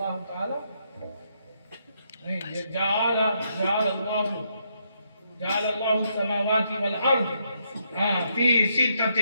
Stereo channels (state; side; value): inverted; both; correlation -0.77